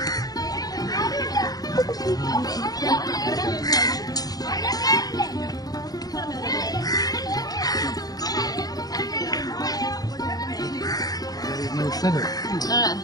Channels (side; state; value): right; late; 0.18 ms